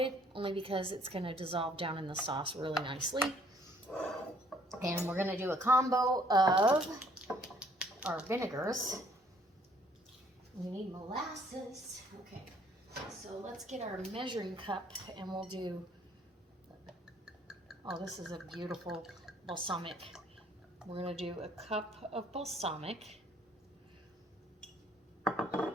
only because it's going to dissolve down in the sauce really nicely. And we're going to do a combo of our vinegars. We need molasses. Okay, so let's get our measuring cup and we'll do, oh, this is a beautiful balsamic. We're going to do a cup of balsamic.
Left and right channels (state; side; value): normal; both; correlation 0.62